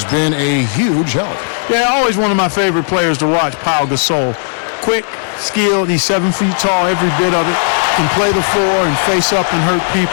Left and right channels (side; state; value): right; silent; digital silence